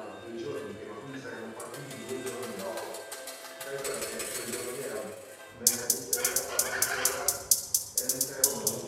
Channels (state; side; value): identical; both; correlation 1.00